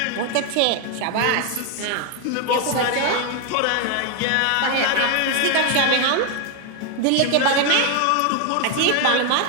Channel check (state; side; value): different; both; correlation 0.01